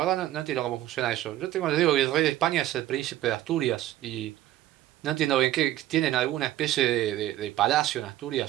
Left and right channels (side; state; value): left; quieter; 14.0 dB